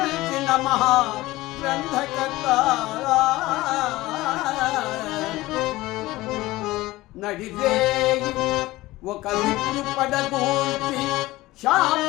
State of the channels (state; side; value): quieter; right; 18.4 dB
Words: మహా గ్రంథకర్త నడిరేయి ఒక విష్ణు పడగూర్చి